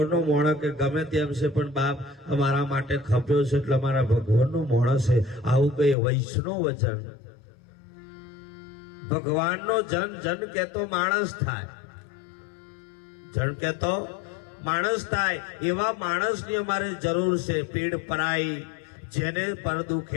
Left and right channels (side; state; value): right; drops out; at 6.0 s